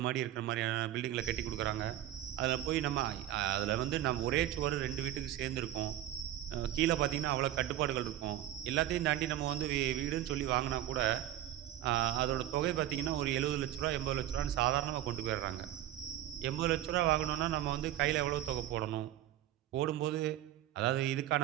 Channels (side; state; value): left; quieter; 12.7 dB